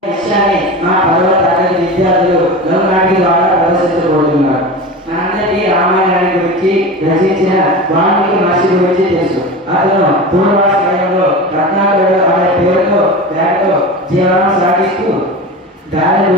దృశ్యాన్ని మా 10వ తరగతి విద్యార్థులు లఘునాటిక ద్వారా ప్రదర్శించబోతున్నారు. మనందరికీ రామాయణాన్ని గురించి రచించిన వాల్మీకి మహర్షి గురించి తెలుసు. అతను పూర్వాశ్రయంలో రత్నాకరుడు అనే పేరుతో పేరుతో జీవనం సాగిస్తూ దారి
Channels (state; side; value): normal; both; correlation 0.29